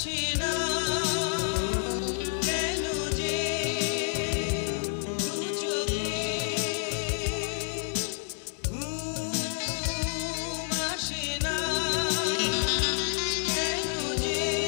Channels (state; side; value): silent; right; 58 dB below the other